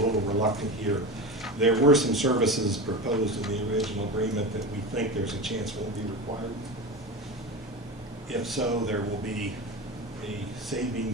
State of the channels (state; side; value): normal; both; correlation 0.25